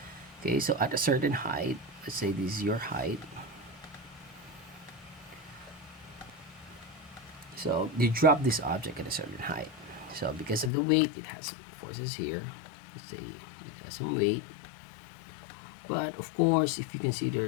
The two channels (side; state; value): right; drops out; at 10.7 s